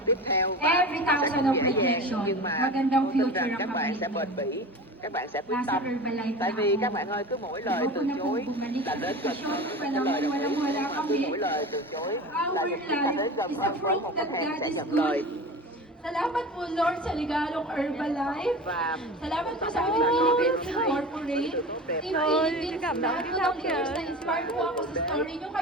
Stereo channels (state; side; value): normal; both; correlation 0.33